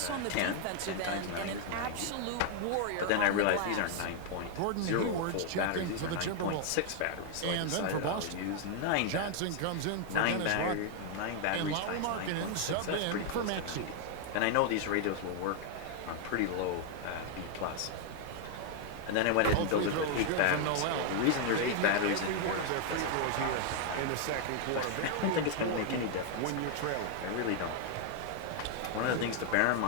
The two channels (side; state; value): both; different; correlation 0.00